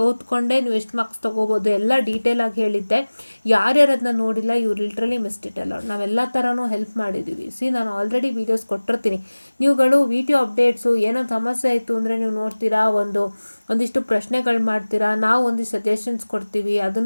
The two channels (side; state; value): both; inverted; correlation -1.00